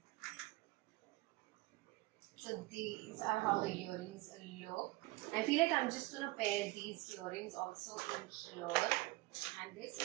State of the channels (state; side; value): quieter; left; 21.3 dB